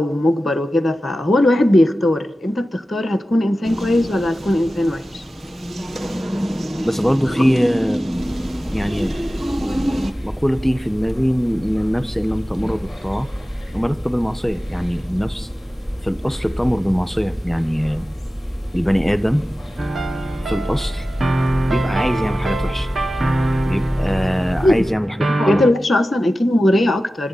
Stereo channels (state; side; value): normal; both; correlation 0.95